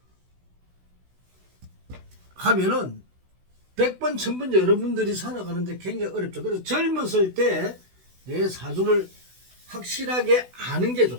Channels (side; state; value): left; late; 16 ms